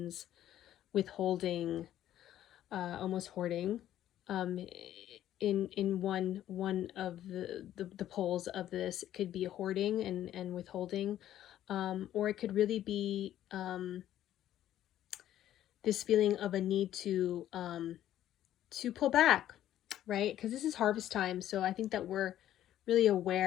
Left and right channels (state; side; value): quieter; right; 12.2 dB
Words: withholding, almost hoarding. In one of the poles of this, it could be hoarding and withholding, or it could really be this feeling of a need to pull back, right? Because this is harvest time, so I think that we're really